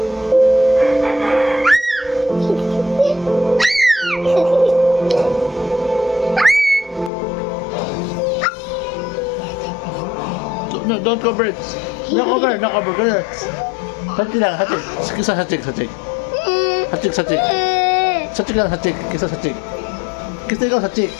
No, don't cover it. No cover, no cover. Ganyan. Hatik lang, hatik. Kisa hatik, hatik. Hatik, hatik. Hatik lang, hatik. Kisa hatik. Kisa ikaw hatik,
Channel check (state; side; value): drops out; right; at 7.1 s